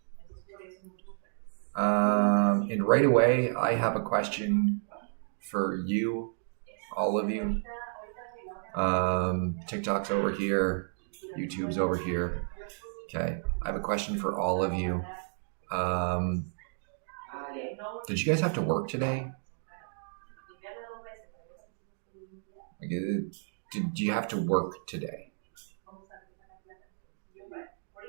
And right away, I have a question for you, all of you. TikTok's over here. YouTube's over here. Okay. I have a question for all of you. Did you guys have to work today? Did you have to work today?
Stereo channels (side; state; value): left; silent; digital silence